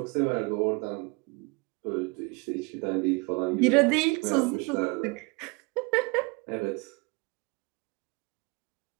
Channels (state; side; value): quieter; left; 29.5 dB